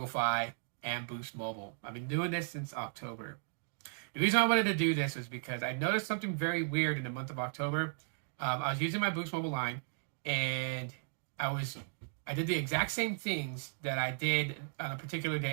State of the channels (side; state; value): left; silent; digital silence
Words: Fi, and Boost Mobile. I've been doing this since October. The reason I wanted to do this was because I noticed something very weird in the month of October. I was using my Boost Mobile line, and I was I did the exact same things that I did on a particular